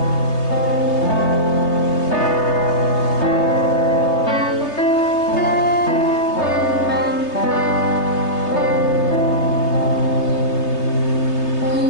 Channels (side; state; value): right; late; 3.2 ms